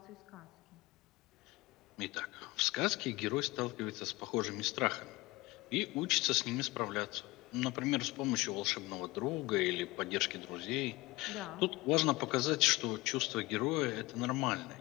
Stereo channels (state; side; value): quieter; right; 21.0 dB